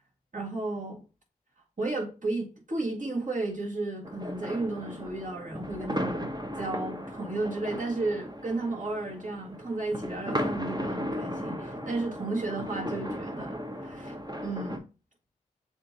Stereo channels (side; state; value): both; normal; correlation 0.75